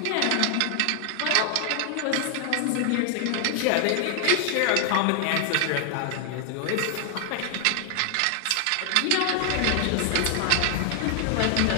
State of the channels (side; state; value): both; different; correlation 0.00